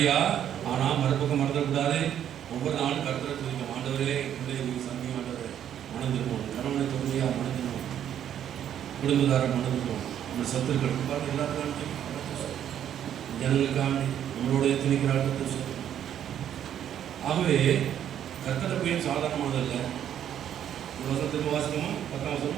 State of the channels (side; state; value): left; quieter; 10.0 dB